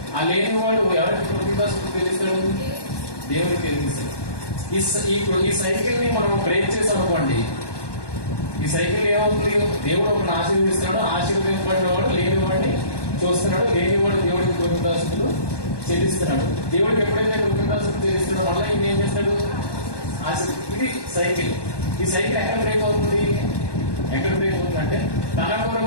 ఆ లేని వాడు ఎవరికి కృతజ్ఞతాస్తుతులు తెలుస్తాడు? దేవునికి తెలిస్తాడు. ఈ సైకిల్ ని మనం బ్రేక్ చేసామనుకోండి, ఈ సైకిల్ ఏమవుతుంది? దేవుడు ఒకరిని ఆశీర్వదిస్తున్నాడు, ఆశీర్వదింపబడిన వాడు లేని వాడిని చూస్తున్నాడు, లేనివాడు దేవుడికి కృతజ్ఞతాస్తుతులు చెల్లిస్తున్నాడు. దేవుడికి ఎప్పుడైతే కృతజ్ఞతాస్తుతులు చెల్లిస్తున్నాడో మళ్ళీ ఈయన ఏం చేస్తాడు? ఇది సైకిల్. ఈ సైకిల్ ఎక్కడ బ్రేక్ అవుతుంది అంటే తన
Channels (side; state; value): right; late; 1.2 ms